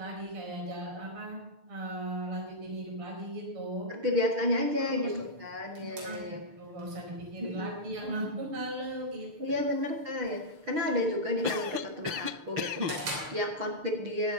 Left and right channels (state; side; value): late; left; 6.6 ms